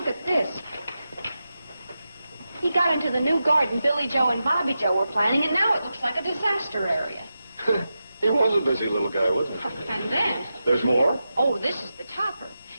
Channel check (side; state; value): both; inverted; correlation -0.90